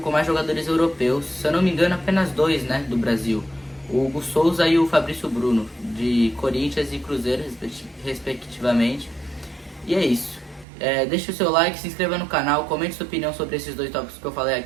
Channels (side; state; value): left; drops out; at 10.7 s